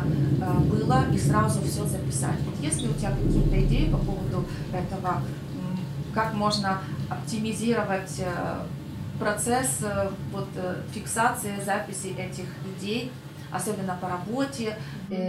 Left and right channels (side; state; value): both; identical; correlation 1.00